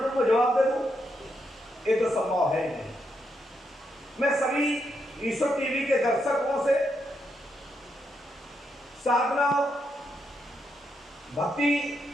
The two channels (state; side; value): normal; both; correlation 0.81